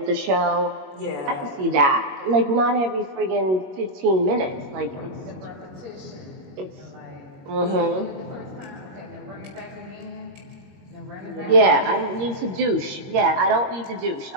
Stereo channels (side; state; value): left; late; 21 ms